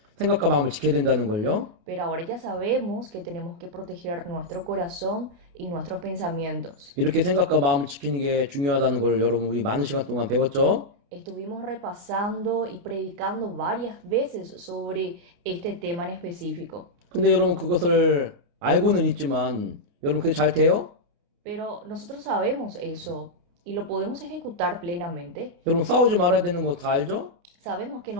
생각과 마음을 지켜야 된다는 걸요. Pero ahora ya sabemos que tenemos que proteger nuestro corazón y nuestros pensamientos. 이렇게 생각과 마음을 지키는 게 중요하다는 걸 여러분 우리 많은 시간 동안 배웠죠. Estuvimos repasando y predicando varias veces sobre este tema en específico. 근데 여러분 그것을 알고는 있지만 여러분 그게 잘 돼요? Pero nosotros sabemos eso y lo podemos ejecutar plenamente. 여러분 싸우지 말아야 되는 거 다 알죠? Sabemos que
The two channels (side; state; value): left; late; 28 ms